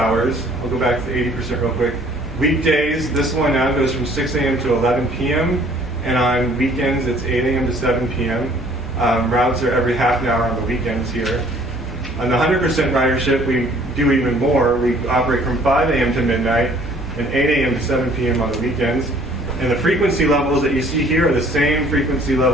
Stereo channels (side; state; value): both; normal; correlation 0.57